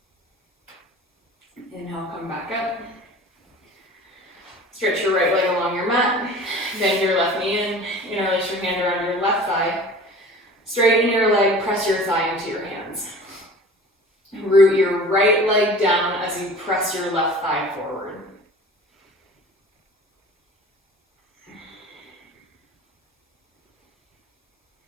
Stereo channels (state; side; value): normal; both; correlation 0.42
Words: Inhale, come back up. Stretch your right leg along your mat. Bend your left knee in. Interlace your hand around your left thigh. Straighten your leg, press your thigh into your hands. Root your right leg down as you press your left thigh forward.